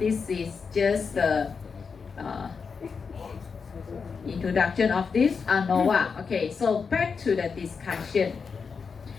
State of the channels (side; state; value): right; quieter; 5.5 dB